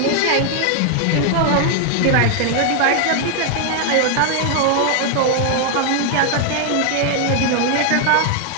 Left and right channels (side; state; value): both; different; correlation 0.00